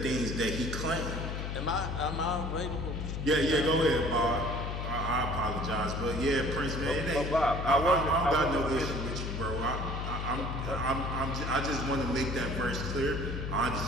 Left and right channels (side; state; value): left; noise; hum, 4 dB below the sound